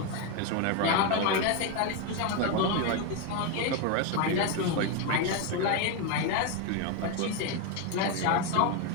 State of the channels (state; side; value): different; both; correlation 0.02